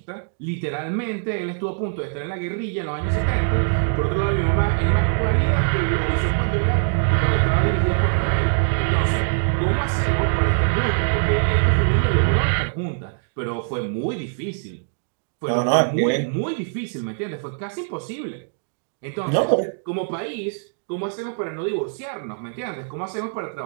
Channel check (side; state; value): left; silent; digital silence